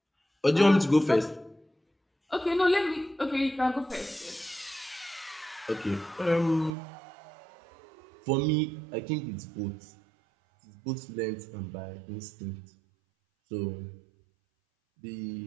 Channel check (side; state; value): left; drops out; at 6.8 s